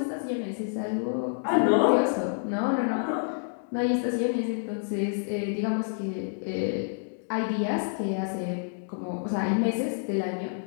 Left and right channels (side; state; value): right; silent; digital silence